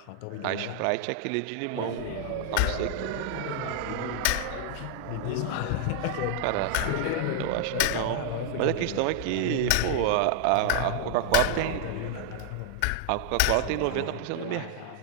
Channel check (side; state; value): both; different; correlation -0.01